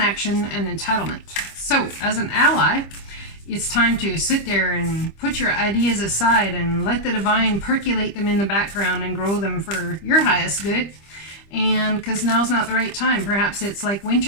and entitlement. So, as an ally, it's time to sit there and put your ideas aside and let the divine percolate them in the background and grow them for your highest good. And because now's not the right time. Perhaps it's like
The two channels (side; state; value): right; late; 25 ms